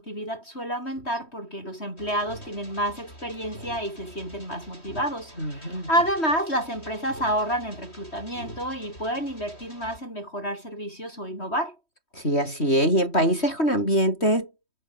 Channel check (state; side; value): late; right; 3.1 ms